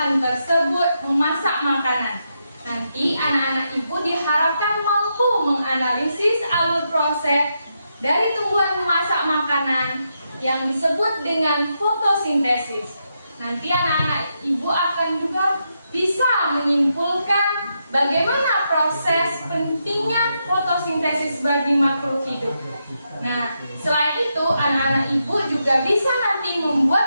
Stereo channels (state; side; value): inverted; both; correlation -0.83